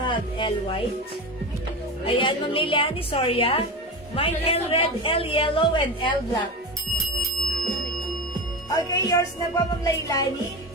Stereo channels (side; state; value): both; normal; correlation 0.23